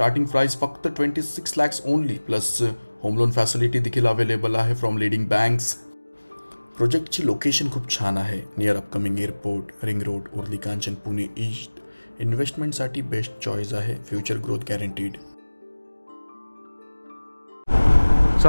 price फक्त 26 lakhs only, plus home loan facility देखील अवेलेबल आहे फ्रॉम लीडिंग बँक्स। प्रोजेक्टची लोकेशन खूप छान आहे, near upcoming airport, ring road, Uruli Kanchan, Pune east इन्व्हेस्टमेंटसाठी बेस्ट चॉईस आहे, फ्युचर ग्रोथ गॅरंटीड.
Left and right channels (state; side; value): inverted; both; correlation -1.00